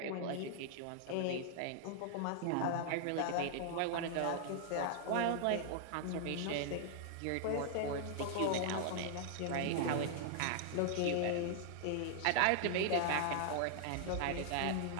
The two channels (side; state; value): both; different; correlation -0.01